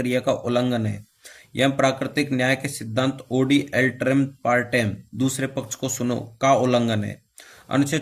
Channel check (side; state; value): both; identical; correlation 1.00